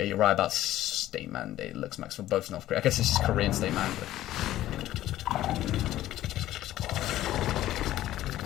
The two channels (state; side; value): quieter; right; 14.0 dB